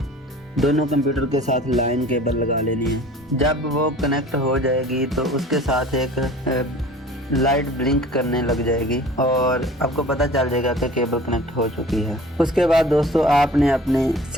दोनों कंप्यूटर के साथ लाइन केबल लगा लेनी है। जब वो कनेक्ट हो जाएगी तो उसके साथ एक लाइट ब्लिंक करने लग जाएगी और आपको पता चल जाएगा कि केबल कनेक्ट हो चुकी है। उसके बाद दोस्तों, आपने अपनी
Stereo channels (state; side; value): normal; both; correlation 0.45